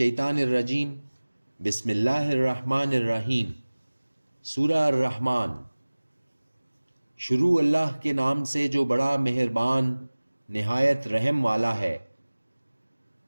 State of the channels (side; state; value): both; inverted; correlation -1.00